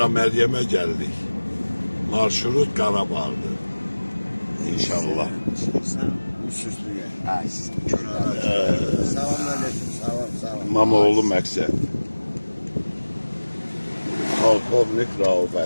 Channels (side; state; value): both; inverted; correlation -1.00